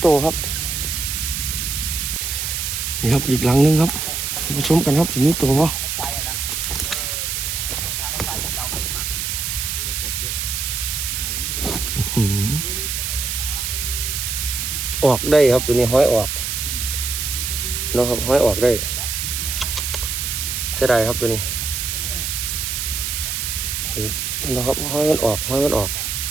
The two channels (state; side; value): noise; right; hiss, 2 dB below the sound